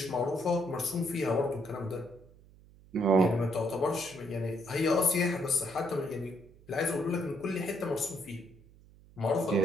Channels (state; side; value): noise; right; hum, 24 dB below the sound